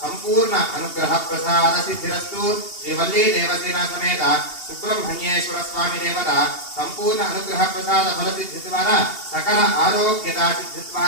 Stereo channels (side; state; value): right; late; 2.8 ms